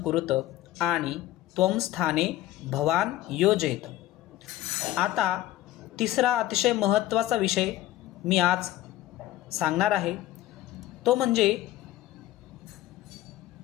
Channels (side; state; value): right; quieter; 14.6 dB